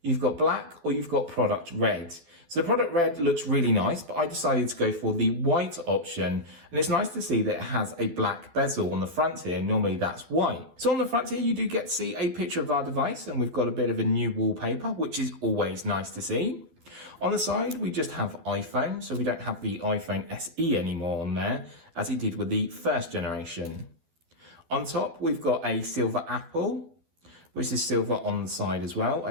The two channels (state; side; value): late; left; 12 ms